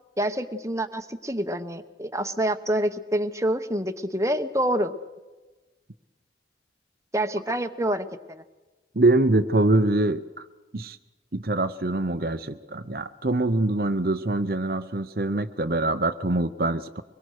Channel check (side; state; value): both; normal; correlation 0.52